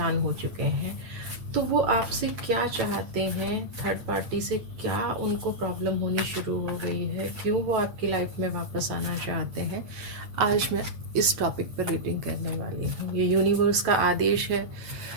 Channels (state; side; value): late; left; 8.7 ms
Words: हो चुके हैं, तो वो आपसे क्या चाहते हैं, थर्ड पार्टी से क्या उनको प्रॉब्लम होनी शुरू हो गई है, क्यों वो आपकी लाइफ में वापस आना चाहते हैं। आज मैं इस टॉपिक पर रीडिंग करने वाली हूँ। ये यूनिवर्स का आदेश है,